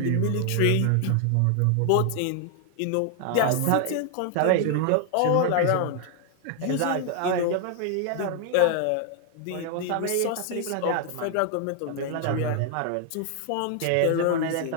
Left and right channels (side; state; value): both; different; correlation 0.00